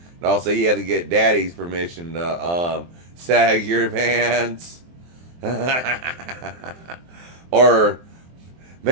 And also you had to get daddy's permission to sag your pants. Or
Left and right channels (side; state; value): left; late; 23 ms